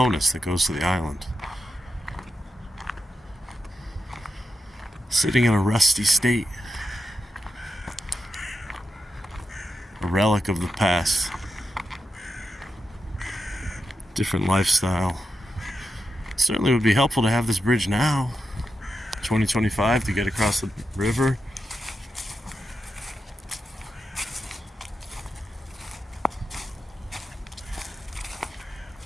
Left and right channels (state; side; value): normal; both; correlation 0.88